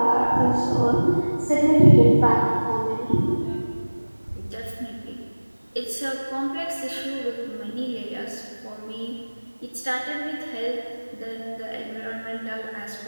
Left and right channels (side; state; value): both; inverted; correlation -1.00